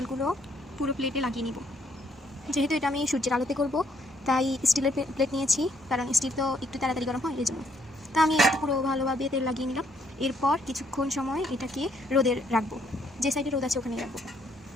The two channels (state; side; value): normal; both; correlation 0.69